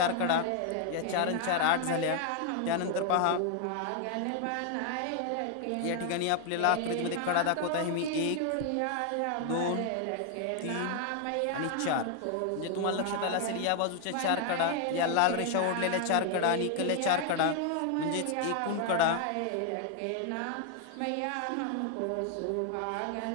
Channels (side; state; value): both; different; correlation 0.00